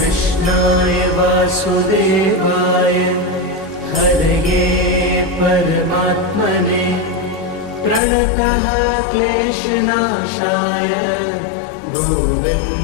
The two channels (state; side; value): drops out; right; at 8.0 s